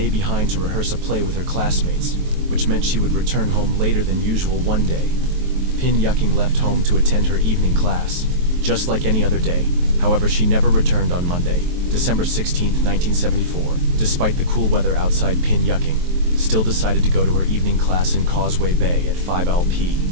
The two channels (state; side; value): late; left; 23 ms